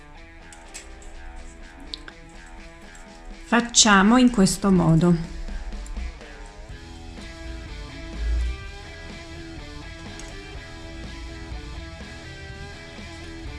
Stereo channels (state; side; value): identical; both; correlation 1.00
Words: facciamo in questo modo.